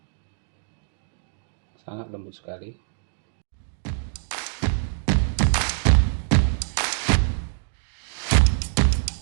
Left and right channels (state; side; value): silent; left; 62 dB below the other